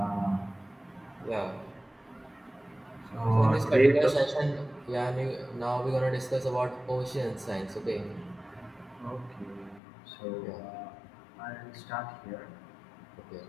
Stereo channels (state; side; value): drops out; right; at 9.8 s